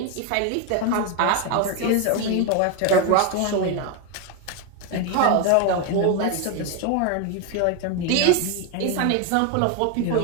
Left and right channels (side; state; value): both; different; correlation 0.01